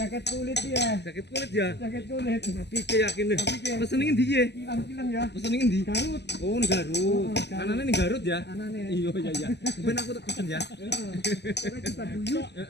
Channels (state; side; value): late; right; 0.50 ms